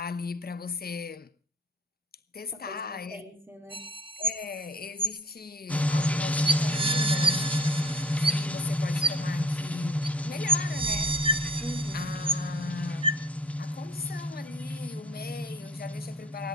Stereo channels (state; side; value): normal; both; correlation 0.49